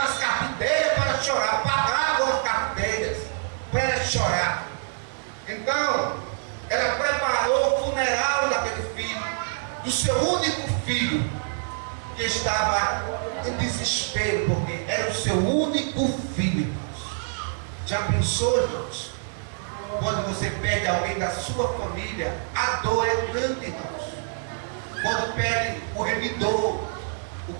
as carpinteiras para chorar, pagavam as carpinteiras para elas chorar. Então, ela preparou o funeral daquele filho, do seu único filho, que estava em desespero, porque era o seu único filho. Já pensou, irmãos? Quando você perde alguém da sua família, a dor é grande, irmãos. Quando perde o remidor, o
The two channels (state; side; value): silent; left; digital silence